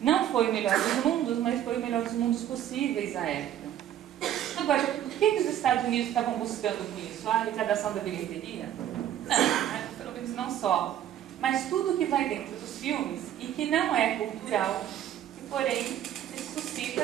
Não foi o melhor dos mundos, mas foi o melhor dos mundos possíveis à época. Agora, o que os Estados Unidos estavam buscando com isso? A arrecadação da bilheteria? Não, pelo menos não só. Mas tudo que vai dentro dos filmes e que não é cultural, que porém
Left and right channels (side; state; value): left; quieter; 11.2 dB